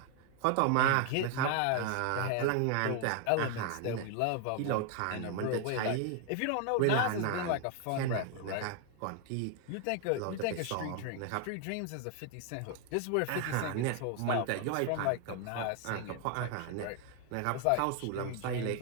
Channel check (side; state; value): both; different; correlation 0.01